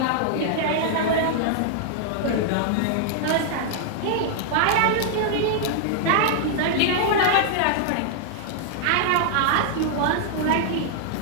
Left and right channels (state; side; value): different; both; correlation -0.01